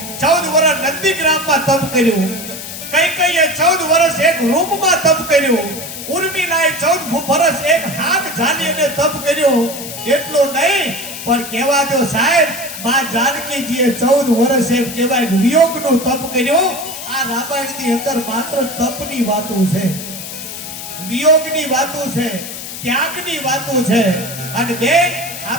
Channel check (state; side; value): noise; left; hiss, 9 dB below the sound